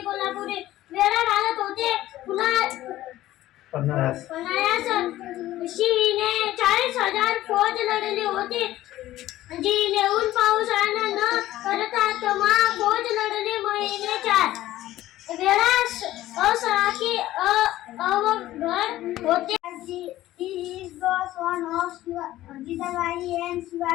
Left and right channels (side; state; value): right; quieter; 15.0 dB